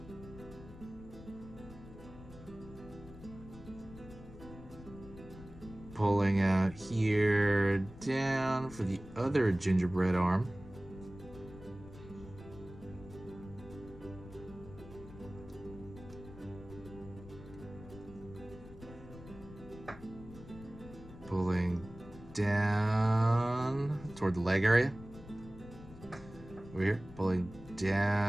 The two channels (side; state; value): left; noise; rumble, 16 dB below the sound